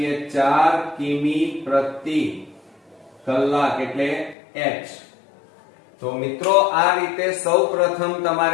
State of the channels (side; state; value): right; drops out; at 4.4 s